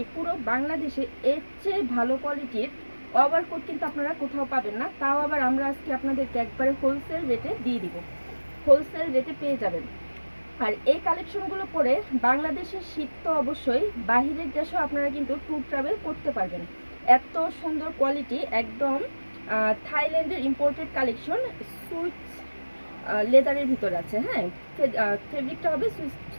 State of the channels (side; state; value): both; inverted; correlation -1.00